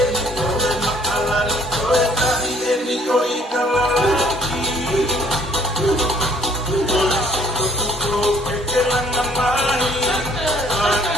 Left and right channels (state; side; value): normal; both; correlation 0.60